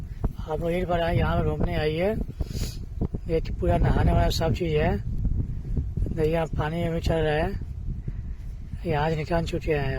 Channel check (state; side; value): identical; both; correlation 1.00